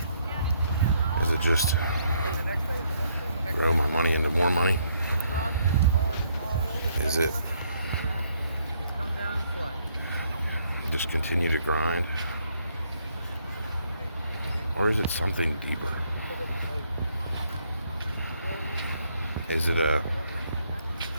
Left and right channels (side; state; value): both; inverted; correlation -0.70